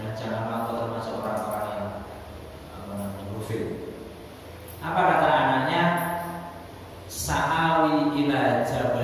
janganlah kau termasuk orang-orang yang ghafil. Apa kata anaknya? Sa'awi ila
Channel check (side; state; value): both; identical; correlation 1.00